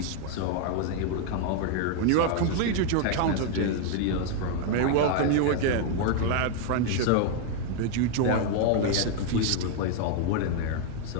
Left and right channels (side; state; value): both; different; correlation 0.00